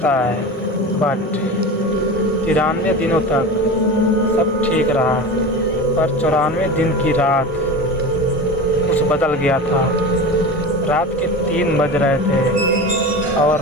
है। बट 93 दिनों तक सब ठीक रहा, पर 94 दिन की रात कुछ बदल गया था। रात के 3 बज रहे थे और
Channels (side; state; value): both; normal; correlation 0.29